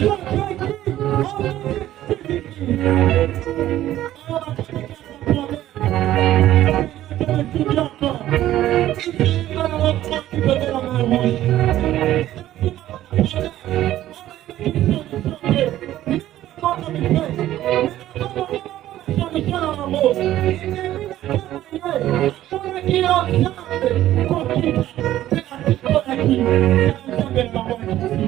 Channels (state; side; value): quieter; left; 13.6 dB